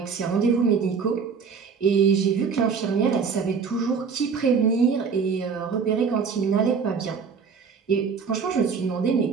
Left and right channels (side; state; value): left; quieter; 5.8 dB